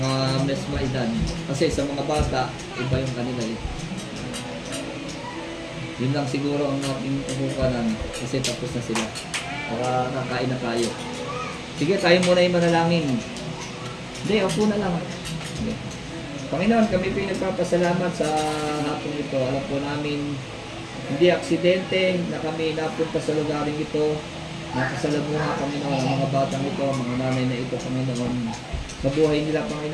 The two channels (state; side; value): identical; both; correlation 1.00